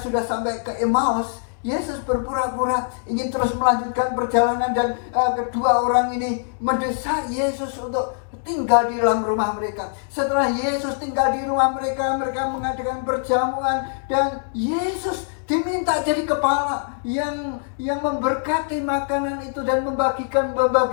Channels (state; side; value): silent; right; digital silence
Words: sampai ke Emmaus, Yesus berpura-pura ingin terus melanjutkan perjalanan dan kedua orang ini mendesak Yesus untuk tinggal di dalam rumah mereka. Setelah Yesus tinggal di rumah mereka, mereka mengadakan perjamuan dan Yesus diminta jadi kepala yang memberkati makanan itu dan